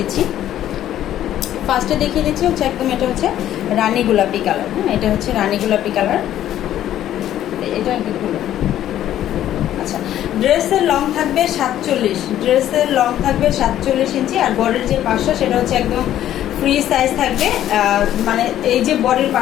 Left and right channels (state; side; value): quieter; right; 12.0 dB